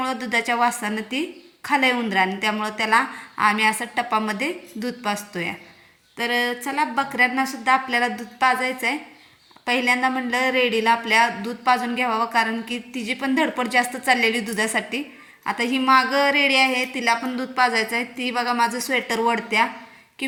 दुधाच्या वासानं ती खाल्लंय उंदराने. त्यामुळं त्याला आम्ही असं टपामध्ये दूध पाजतोय. तर चला, बकऱ्यांनासुद्धा आपल्याला दूध पाजायचं आहे. पहिल्यांदा म्हणलं रेडीला आपल्या दूध पाजून घ्यावं, कारण की तिची पण धडपड जास्त चाललेली दुधासाठी. आता ही मागं रेडी आहे, तिला पण दूध पाजायचं आहे. ती बघा माझं स्वेटर वडत्या की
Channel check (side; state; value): both; identical; correlation 1.00